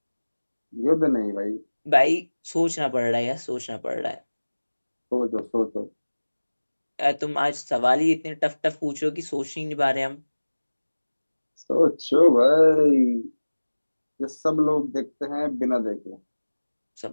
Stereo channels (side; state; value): both; inverted; correlation -1.00